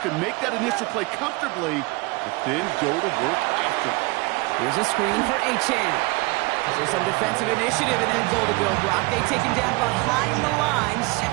could make that initial play comfortably, but then go to work after. Here's a screen for Nchaa14. There's some defensive initiative in that goal to go, Brock. They take him down behind the line.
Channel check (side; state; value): left; quieter; 25.3 dB